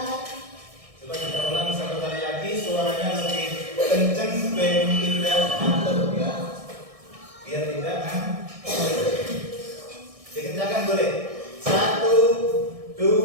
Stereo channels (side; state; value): left; late; 1.6 ms